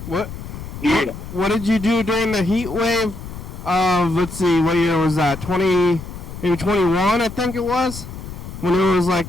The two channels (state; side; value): noise; left; rumble, 11 dB below the sound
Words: What? Yeah. What did you do during the heat wave of, let's see, what year was that? 20, maybe 21, I think it was? When it was